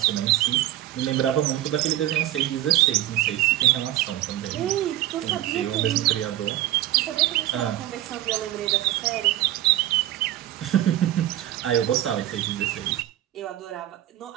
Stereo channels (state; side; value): quieter; left; 14.0 dB